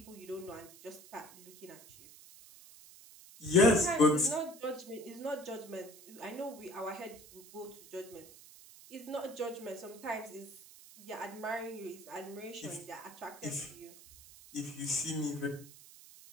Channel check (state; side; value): noise; right; hiss, 19 dB below the sound